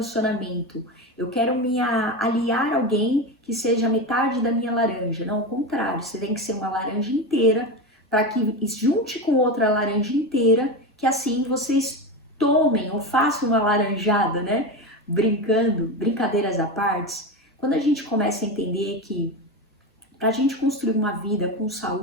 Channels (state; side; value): normal; both; correlation 0.20